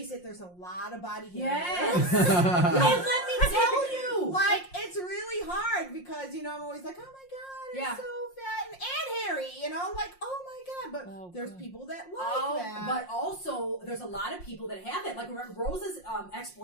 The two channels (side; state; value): right; late; 5.6 ms